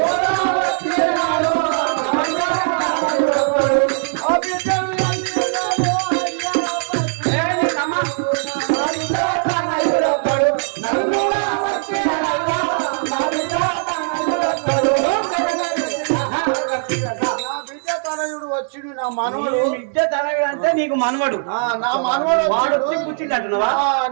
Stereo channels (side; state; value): left; silent; 66 dB below the other